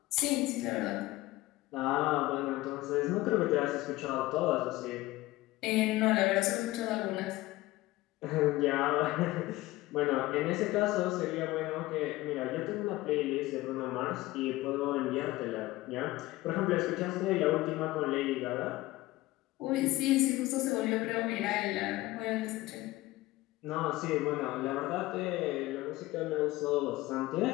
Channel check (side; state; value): right; quieter; 18.4 dB